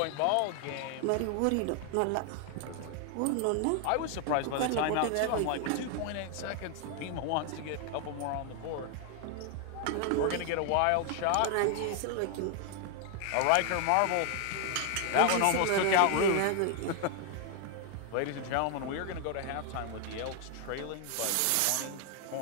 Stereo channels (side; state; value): both; different; correlation 0.00